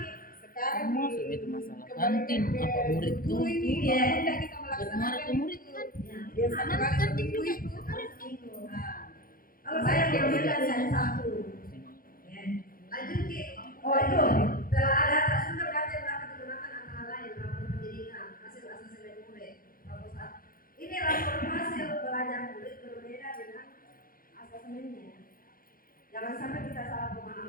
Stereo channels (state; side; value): late; right; 0.42 ms